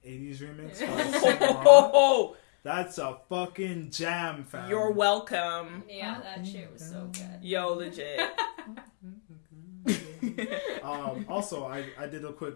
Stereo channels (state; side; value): silent; right; 59 dB below the other